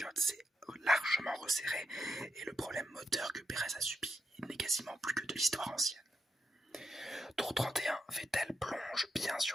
s'est largement resserré et le problème moteur que Pérez a subi n'est quasiment plus que de l'histoire ancienne. Tour 31, Vettel plonge bien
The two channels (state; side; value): normal; both; correlation 0.83